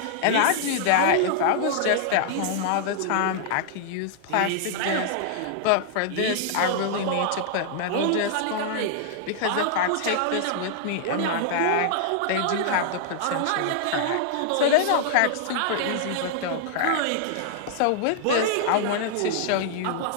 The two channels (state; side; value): different; both; correlation -0.01